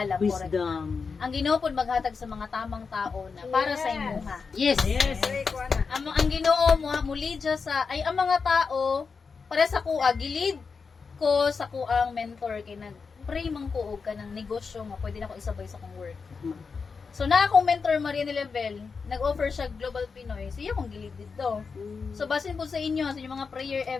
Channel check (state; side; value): quieter; right; 5.1 dB